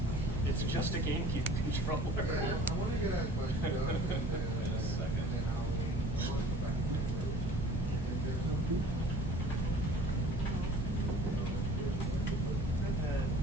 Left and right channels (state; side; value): normal; both; correlation 0.46